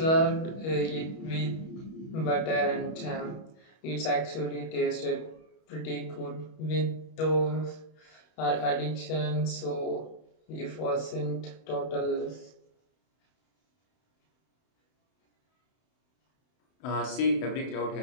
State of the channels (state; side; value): late; right; 31 ms